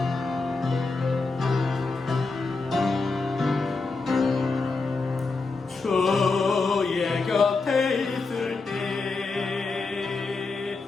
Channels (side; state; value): right; quieter; 3.9 dB